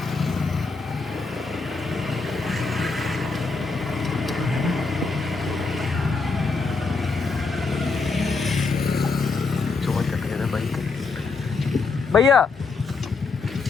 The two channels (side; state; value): right; quieter; 4.3 dB